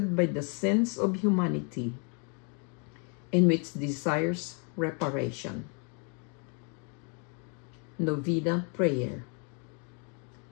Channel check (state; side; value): quieter; right; 37.8 dB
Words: by the sins of humanity, in which desires reparation. Novena Prayer.